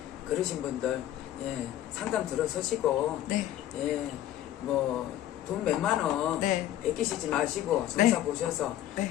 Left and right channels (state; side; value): quieter; right; 12.8 dB